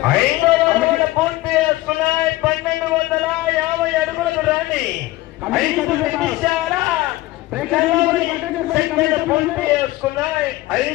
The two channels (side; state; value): right; quieter; 18.2 dB